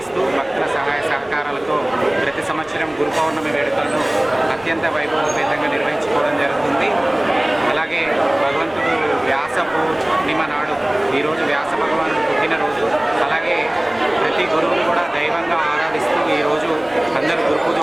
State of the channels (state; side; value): noise; right; rumble, 29 dB below the sound